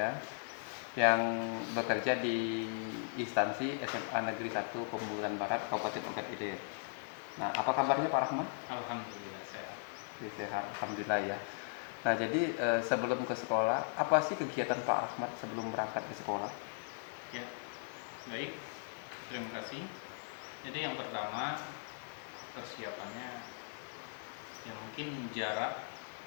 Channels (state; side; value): silent; right; 52 dB below the other